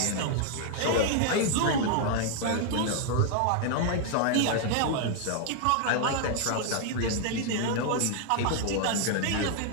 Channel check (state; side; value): different; both; correlation 0.00